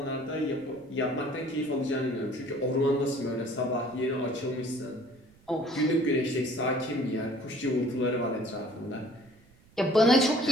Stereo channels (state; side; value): noise; right; rumble, 28 dB below the sound